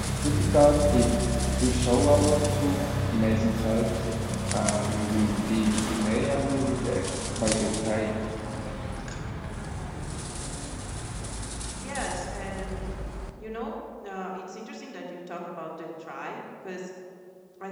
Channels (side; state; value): both; identical; correlation 1.00